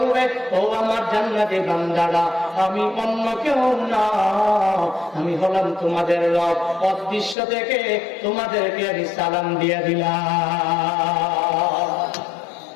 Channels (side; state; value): right; drops out; at 7.4 s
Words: ও আমার জান্নাতি বান্দারা, আমি অন্য কেউ না, আমি হলাম তোমাদের রব, অদৃশ্য থেকে তোমাদেরকে আমি সালাম দিয়ে দিলাম।